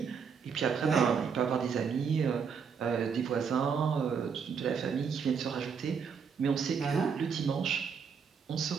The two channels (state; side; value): quieter; left; 6.4 dB